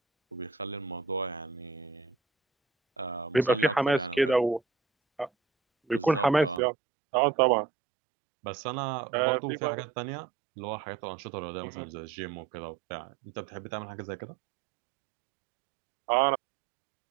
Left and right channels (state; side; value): drops out; left; at 6.6 s